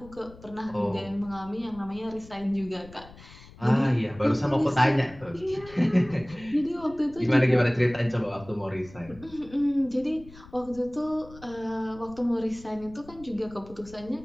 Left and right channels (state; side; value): noise; left; rumble, 20 dB below the sound